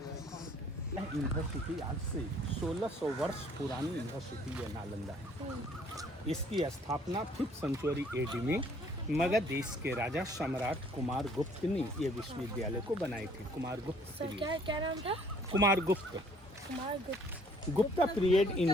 यूनिवर्सिटी आज से 1600 वर्ष पुरानी यूनिवर्सिटी है नालंदा है। इसकी स्थापना 5th सेंचुरी एडी में मगध देश के राजा सम्राट कुमार गुप्त ने ये विश्वविद्यालय को बनाए थे। कुमार गुप्त क्या नाम था? कुमार गुप्त। गुप्ता पीरियड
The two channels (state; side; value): normal; both; correlation 0.59